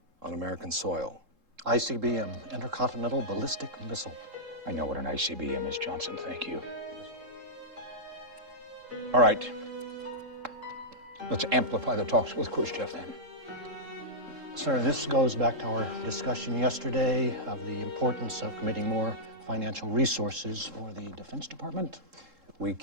on American soil. ICBM, Intercontinental Ballistic Missile. I know what an ICBM is, Johnson. Thank you. All right. Let's amplify the talks with Khrushchev then. Sir, this goes back to our discussion yesterday of the importance of committing more financial resources for the Defense Department. We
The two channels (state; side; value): late; left; 3.7 ms